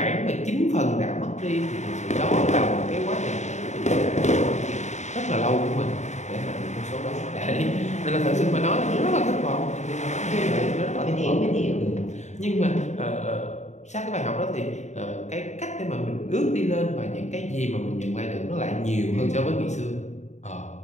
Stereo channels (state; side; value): late; right; 0.34 ms